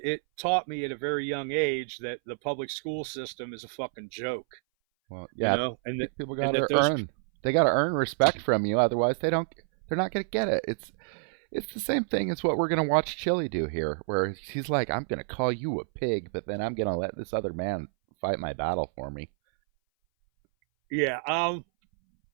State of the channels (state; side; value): silent; left; 59 dB below the other